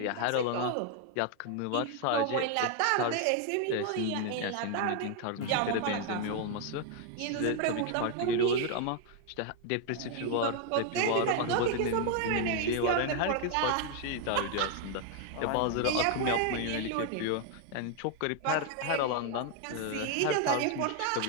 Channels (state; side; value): different; both; correlation 0.01